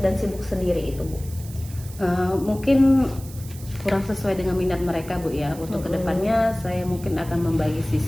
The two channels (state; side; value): noise; right; hiss, 18 dB below the sound